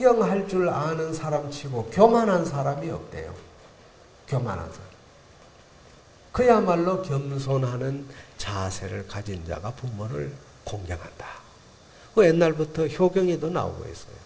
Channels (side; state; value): both; identical; correlation 1.00